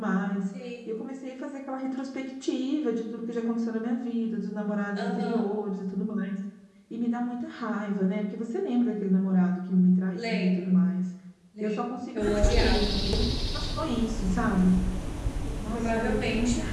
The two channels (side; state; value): both; identical; correlation 1.00